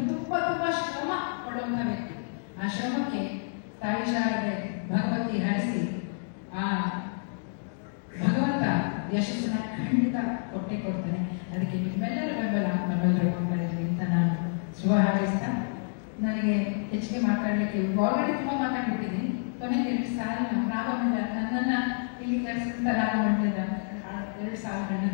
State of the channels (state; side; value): silent; right; digital silence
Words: ತುಂಬಾ ಶ್ರಮ ಪಡುವಂತ ವ್ಯಕ್ತಿ. ಆ ಶ್ರಮಕ್ಕೆ ತಾಯಿ ಶಾರದೆ ಭಗವತಿ ಹರಿಸಿ ಆ ಭಗವಂತ ಯಶಸ್ಸನ್ನ ಖಂಡಿತ ಕೊಟ್ಟೆ ಕೊಡ್ತಾನೆ. ಅದಕ್ಕೆ ನಿಮ್ಮೆಲ್ಲರ ಬೆಂಬಲ ನಮ್ಮೆಲ್ಲರೂ ಕೊಡ್ತಾ ಇದ್ವಿ ಅಂತ ನಾನು ಶುಭ ಹಾರೈಸ್ತಾ, ನನಗೆ ಹೆಚ್ಚಿಗೆ ಮಾತಾಡಲಿಕ್ಕೆ ಆಲ್ರೆಡಿ ತುಂಬಾ ಮಾತಾಡ್ಬಿಟ್ಟಿದ್ದೀನಿ. ಕೊನೆಗೆ 2 ಸಾಲಿನ ರಾಗಮಂಡಲ ನನ್ನನ್ನ ಇಲ್ಲಿ ಕರೆಸಿದಂತ ರಾಗಮಂಡಲದ 2 ಸಾಲುಗಳನ್ನ